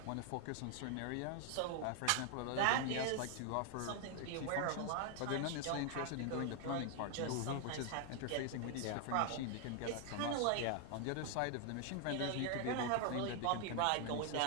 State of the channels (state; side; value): different; both; correlation 0.00